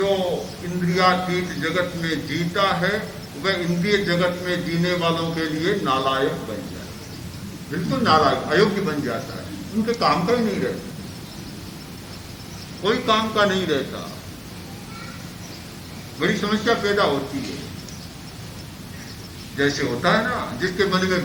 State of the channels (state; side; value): identical; both; correlation 1.00